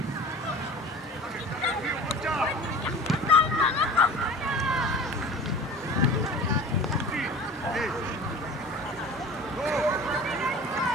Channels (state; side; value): normal; both; correlation 0.40